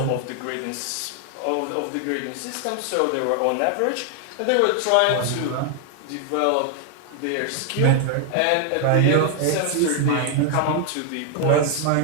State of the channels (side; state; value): both; different; correlation 0.00